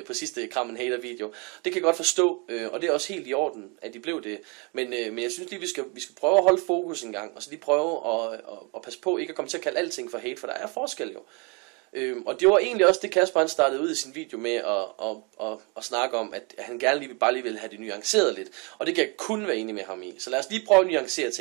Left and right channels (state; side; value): quieter; left; 31.8 dB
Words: sidste Kram en Hater video. Det kan jeg godt forstå, og det er også helt i orden, at de blev det. Men jeg synes lige, vi skal prøve at holde fokus en gang, og så lige prøve at passe på ikke at komme til at kalde alting for hate, for der er forskel jo. Og det var egentlig også det, Kasper han startede ud i sin video med at snakke om, at han gerne lige vil have det nuanceret lidt. Og det kan jeg kun være enig med ham i. Så lad os lige prøve at nuancere